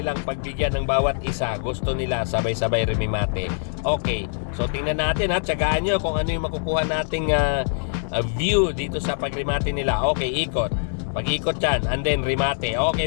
pagbigyan ng bawat isa. Gusto nila sabay-sabay rimimate. Okay. So tingnan natin, ha. Tiyagaan nyo kung ano yung makukuha nating view dito sa pagrimate nila. Okay, ikot. Pag-ikot yan, and then rimate. Okay,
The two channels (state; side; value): silent; right; 63 dB below the other